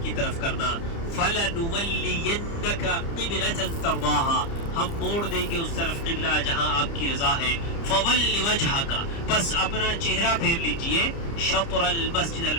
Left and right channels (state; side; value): late; right; 30 ms